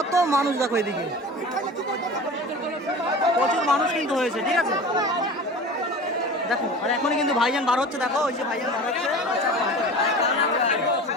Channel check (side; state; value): both; normal; correlation 0.36